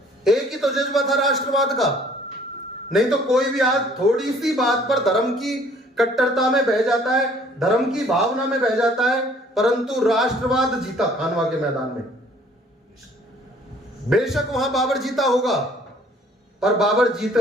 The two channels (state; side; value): normal; both; correlation 0.57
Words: एक ही तो जज्बा था राष्ट्रवाद का। नहीं तो कोई भी आज थोड़ी सी बात पर धर्म की कट्टरता में बह जाता है, धर्म की भावना में बह जाता है, परंतु राष्ट्रवाद जीता खानवा के मैदान में। बेशक वहां बाबर जीता होगा, पर बाबर जीत